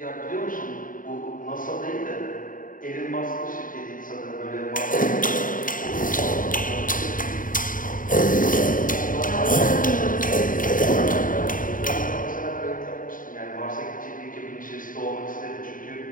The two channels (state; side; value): late; right; 0.39 ms